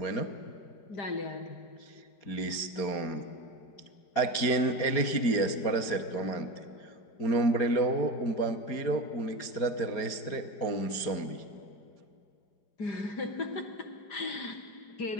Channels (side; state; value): right; late; 4.9 ms